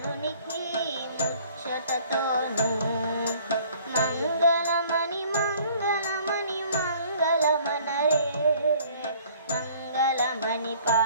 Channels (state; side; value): inverted; both; correlation -0.55